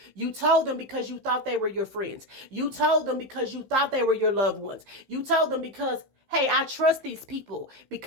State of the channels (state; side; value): late; left; 15 ms